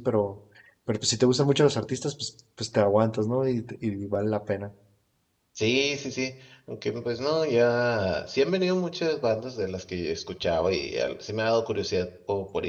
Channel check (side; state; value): both; identical; correlation 1.00